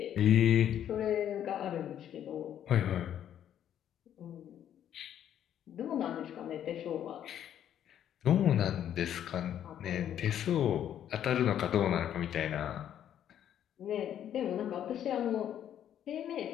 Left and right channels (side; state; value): right; quieter; 10.3 dB